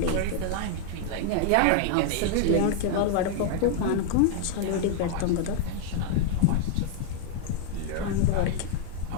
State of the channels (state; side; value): different; both; correlation 0.00